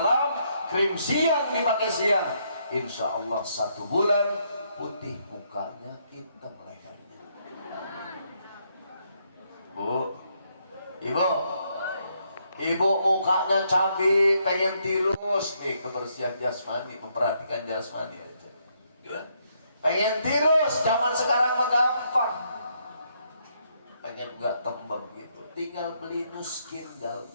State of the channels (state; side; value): inverted; both; correlation -0.74